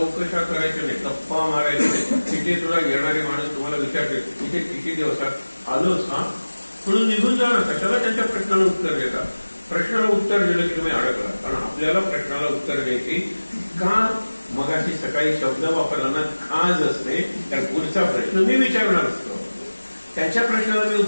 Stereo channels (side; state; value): both; inverted; correlation -1.00